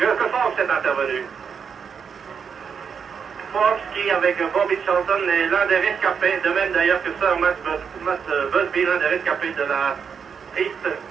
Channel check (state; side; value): quieter; left; 6.6 dB